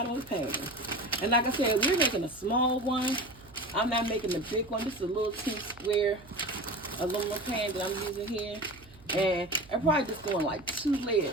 of the pan. And like I said, we're making a small one. I'm not making the big one. This is a little square aluminum pan that I'm using here. And I'm probably just doing like 2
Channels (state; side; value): noise; right; hum, 23 dB below the sound